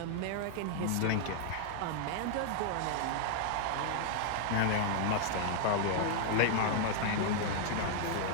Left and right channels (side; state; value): both; different; correlation -0.01